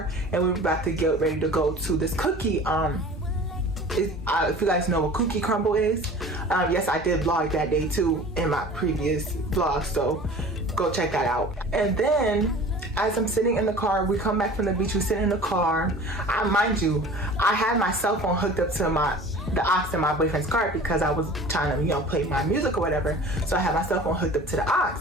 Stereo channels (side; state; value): both; normal; correlation 0.42